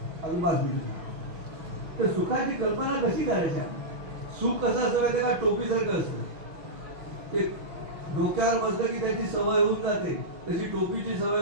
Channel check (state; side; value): late; left; 6.4 ms